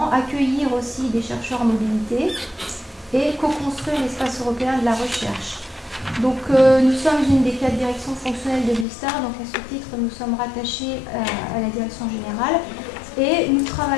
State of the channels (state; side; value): drops out; right; at 8.8 s